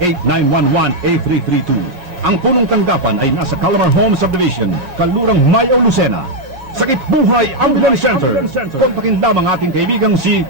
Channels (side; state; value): left; late; 5.5 ms